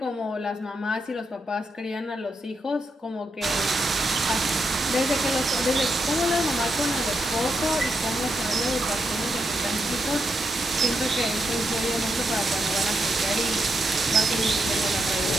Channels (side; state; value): both; normal; correlation 0.82